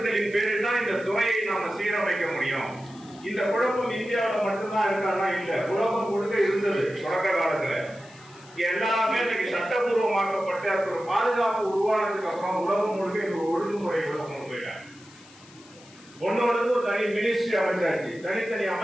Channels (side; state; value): left; noise; hiss, 23 dB below the sound